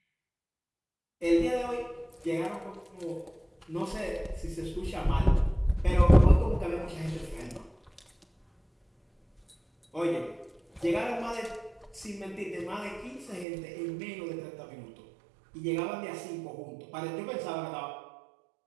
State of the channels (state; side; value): drops out; left; at 13.5 s